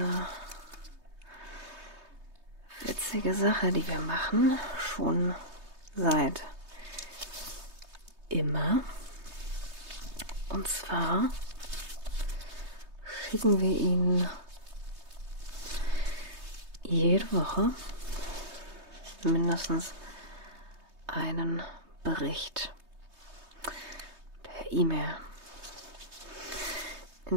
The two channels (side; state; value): left; late; 3.2 ms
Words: witzige Sache, die wir machen, schon seit immer. Und zwar schicken wir Ihnen jede Woche mindestens einen Bericht per E-Mail.